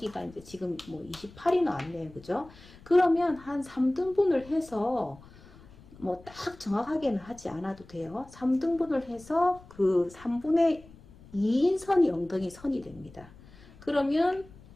이제 지금 뭐 28이 나왔네요. 그죠? 그러면 한 3등분을 해서 뭐 딱 정확하게는 하지 않아도 돼요. 3등분을 해서 그 3분의 2인 선이 엉덩이 선이 됩니다. 그러면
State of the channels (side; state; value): left; noise; rumble, 22 dB below the sound